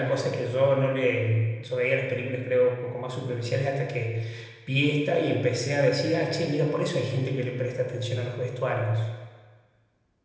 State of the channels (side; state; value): both; identical; correlation 1.00